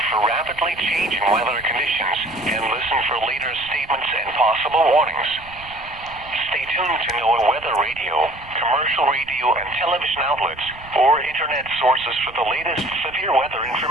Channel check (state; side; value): noise; right; rumble, 20 dB below the sound